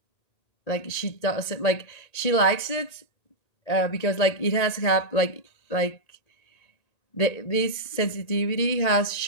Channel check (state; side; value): late; right; 1.9 ms